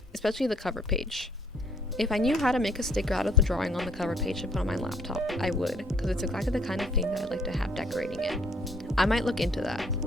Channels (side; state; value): both; normal; correlation 0.62